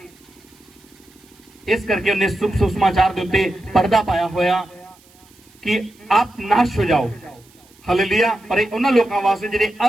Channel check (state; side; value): noise; right; hiss, 29 dB below the sound